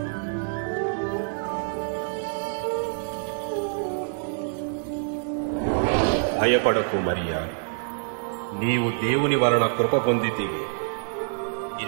భయపడకు మరియా, నీవు దేవుని వలన కృప పొందితివి.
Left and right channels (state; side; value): silent; left; digital silence